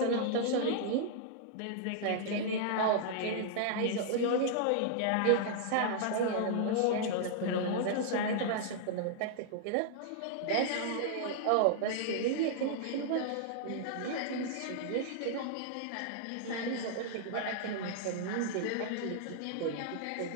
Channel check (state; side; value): different; both; correlation -0.01